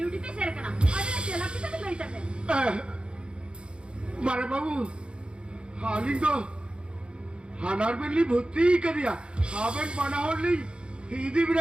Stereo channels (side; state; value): left; late; 0.055 ms